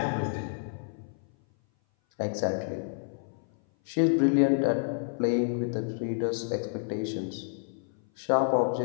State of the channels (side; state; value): right; silent; 56 dB below the other